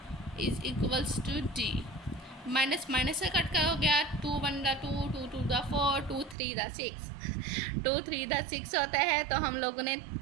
is equals to d। Minus minus से कट का हो गया, 2 1 2, 2 2 4, 2 3 6, 2 3 6 होता है, तो हम लोगों ने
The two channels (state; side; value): drops out; left; at 6.4 s